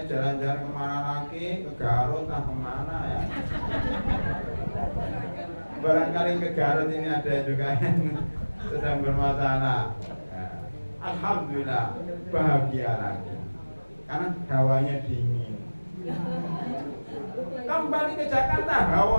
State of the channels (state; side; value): inverted; both; correlation -1.00